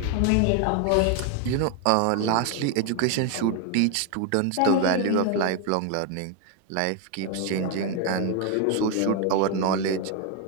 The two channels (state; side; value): different; both; correlation 0.01